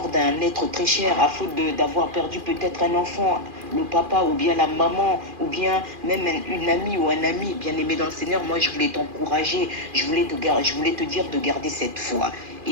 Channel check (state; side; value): late; left; 2.4 ms